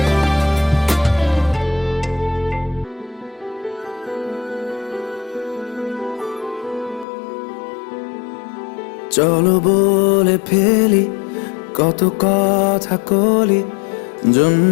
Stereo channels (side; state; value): right; drops out; at 7.1 s